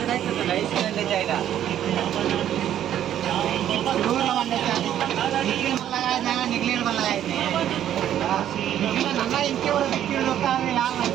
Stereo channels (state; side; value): quieter; left; 11.0 dB